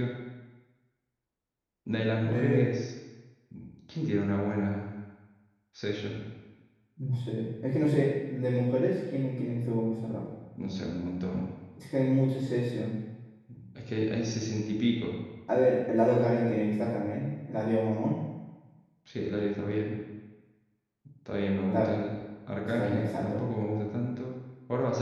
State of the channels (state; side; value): identical; both; correlation 1.00